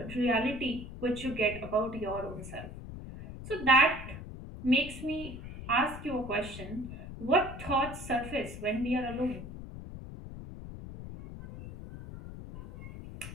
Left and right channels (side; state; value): left; noise; rumble, 11 dB below the sound